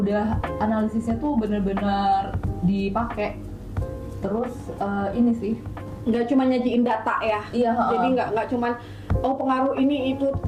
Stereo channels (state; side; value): identical; both; correlation 1.00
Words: analisisnya tuh bener-bener dipakai. Terus ini sih Nggak cuma nyajiin data ya. Iya, Jadi nggak cuman pengaruh ini itu,